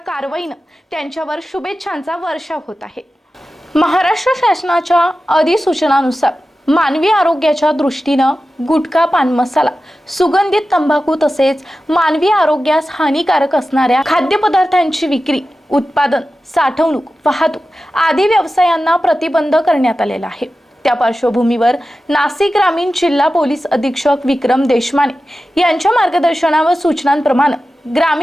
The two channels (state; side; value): normal; both; correlation 0.94